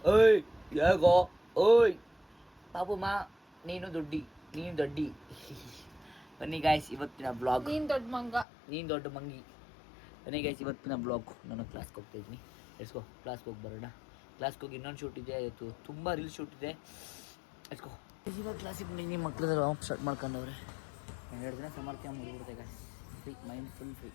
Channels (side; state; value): right; drops out; at 8.5 s